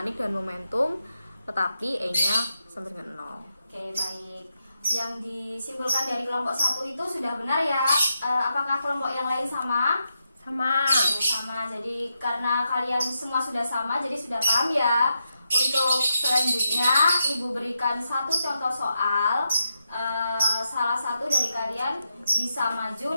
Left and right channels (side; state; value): both; inverted; correlation -0.85